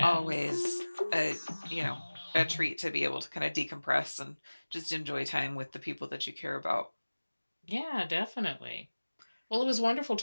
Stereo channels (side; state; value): both; inverted; correlation -1.00